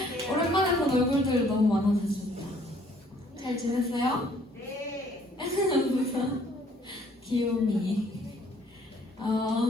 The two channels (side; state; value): both; normal; correlation 0.61